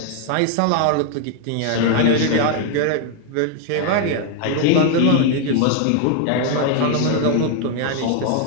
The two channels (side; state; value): both; different; correlation 0.00